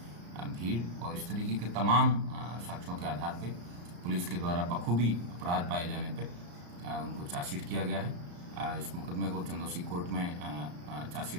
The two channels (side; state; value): left; late; 34 ms